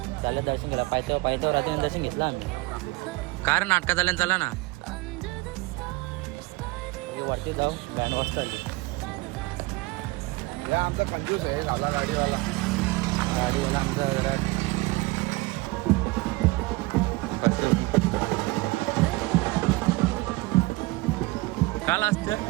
चालेल दर्शन केलं. पायथ्यावर रात्री दर्शन घेतलं आम्ही. कारण नाटकात आल्यानं चला ना वरती जाऊ. बँड वाजता आली. आमचा कंजूस आहे आपला गाडीवाला आमचा जरा काल असतं.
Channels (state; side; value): quieter; left; 22.5 dB